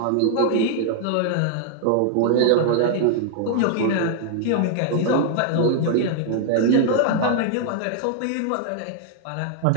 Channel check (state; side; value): different; both; correlation -0.01